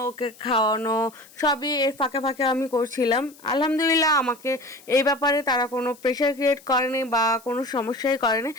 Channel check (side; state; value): left; noise; hiss, 24 dB below the sound